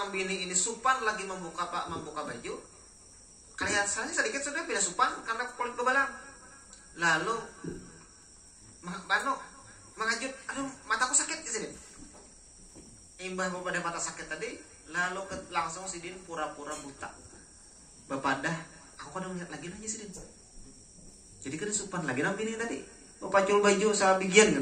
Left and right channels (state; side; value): identical; both; correlation 1.00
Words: ini supan lagi membuka baju. Kelihatan sedikit sudah beda supan karena kulit bebalang. Lalu mengajut, aduh mataku sakit di sini. Imbah pada mata sakit tadi, lalu langsung si Din pura-pura buta. Bapadah, aku kan melihat lagi aja si Din. Jadi kada sopan lagi nang bini tadi. Pacul baju sa bigian